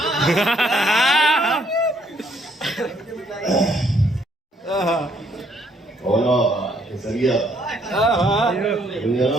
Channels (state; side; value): normal; both; correlation 0.67